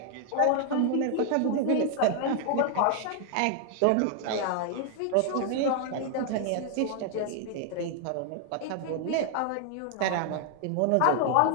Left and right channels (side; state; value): both; different; correlation 0.00